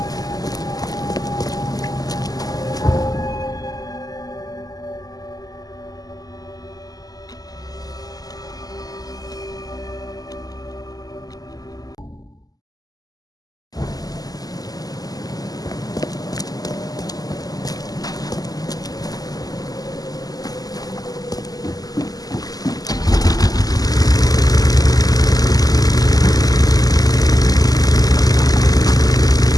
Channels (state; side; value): late; right; 0.18 ms